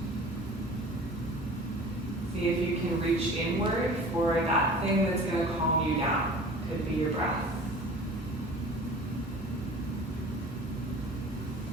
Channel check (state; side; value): normal; both; correlation 0.42